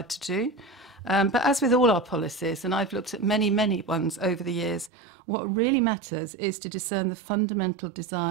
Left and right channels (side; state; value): left; drops out; at 4.9 s